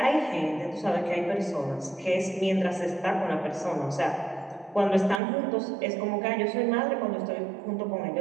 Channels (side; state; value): left; drops out; at 5.2 s